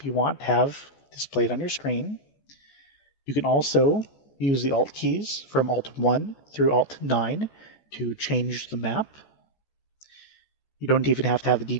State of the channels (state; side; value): late; right; 14 ms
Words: you want to have displayed on your screen. You can also use the Alt keys from Alt 1 through Alt 9 to change the map. You don't even have to have the